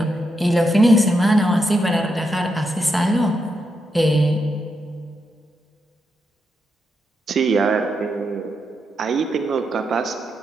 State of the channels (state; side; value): normal; both; correlation 0.83